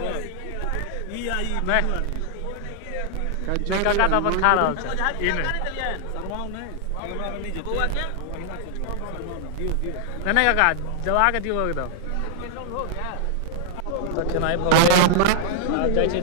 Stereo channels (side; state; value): both; different; correlation 0.00